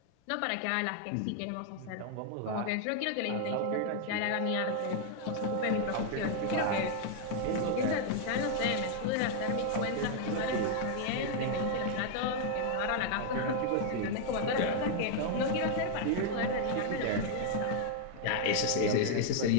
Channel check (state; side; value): different; both; correlation 0.00